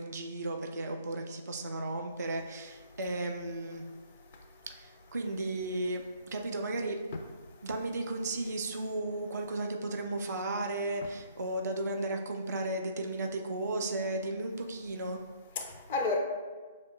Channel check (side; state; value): both; inverted; correlation -0.61